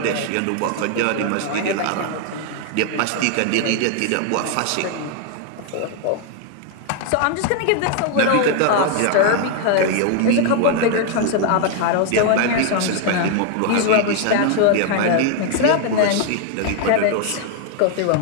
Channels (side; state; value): both; different; correlation 0.00